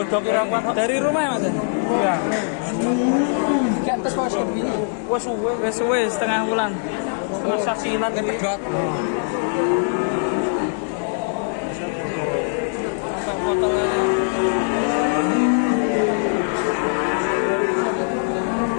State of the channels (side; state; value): right; silent; digital silence